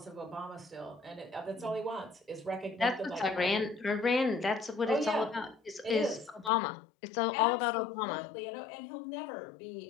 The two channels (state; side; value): drops out; right; at 6.5 s